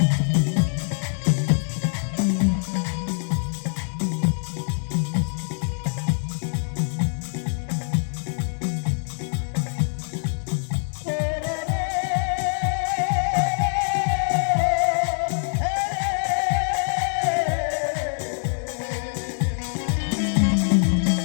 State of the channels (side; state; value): right; silent; 62 dB below the other